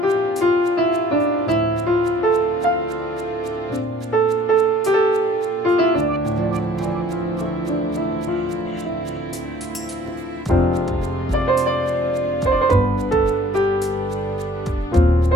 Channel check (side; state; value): both; normal; correlation 0.54